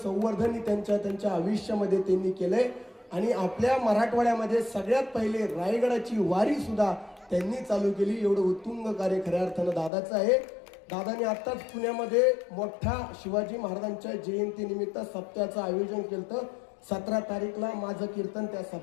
त्यांच्या आयुष्यामध्ये त्यांनी केलंय. आणि आपल्या मराठवाड्यामध्ये सगळ्यात पहिले रायगडाची वारी सुद्धा त्यांनी चालू केली. एवढं उत्तुंग कार्य खऱ्या अर्थानं दादाचं आहे. दादाने आत्ताच पुण्यामध्ये मोठा शिवाजी महाराजांच्या जयंतीनिमित्त सप्त्याचं आयोजन केलं. 17 तारीखला माझं कीर्तन त्या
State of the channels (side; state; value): right; drops out; at 9.9 s